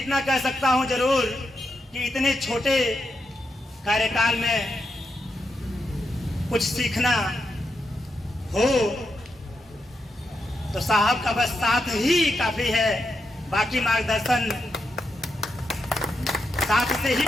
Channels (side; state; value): both; normal; correlation 0.84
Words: कह सकता हूँ जरूर कि इतने छोटे कार्यकाल में कुछ सीखना हो तो साहब का बस साथ ही काफी है। बाकी मार्गदर्शन साथ से ही